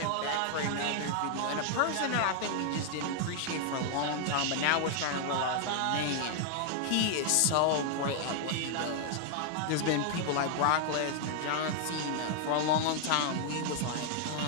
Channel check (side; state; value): both; different; correlation 0.00